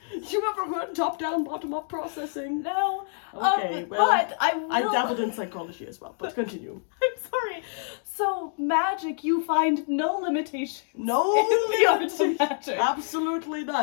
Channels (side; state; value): right; silent; 60 dB below the other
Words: You ever heard top-down, bottom-up processing? No. Okay, well, but I will. I dabbled in psychology as well, but continue. I'm sorry. So magic, you find no limitation. No in the art of limitations. magic. Absolutely